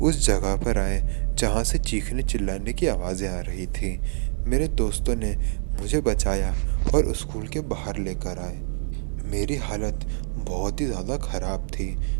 उस जगह पर आए जहाँ से चीखने चिल्लाने की आवाज़ें आ रही थी। मेरे दोस्तों ने मुझे बचाया और स्कूल के बाहर लेकर आए। मेरी हालत बहुत ही ज़्यादा ख़राब थी।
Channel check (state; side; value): silent; left; 61 dB below the other